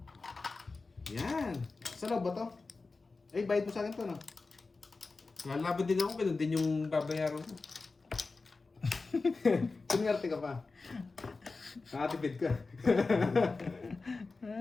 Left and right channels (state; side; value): quieter; right; 3.9 dB